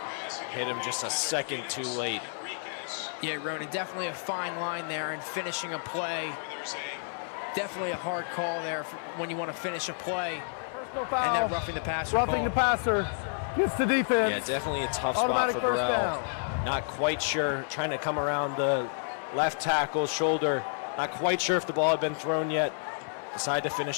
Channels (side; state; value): right; silent; 56 dB below the other